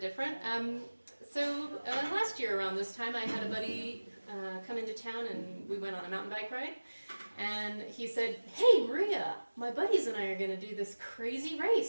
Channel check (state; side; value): inverted; both; correlation -1.00